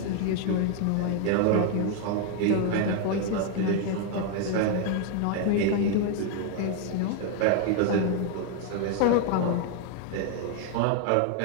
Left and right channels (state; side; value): different; both; correlation 0.01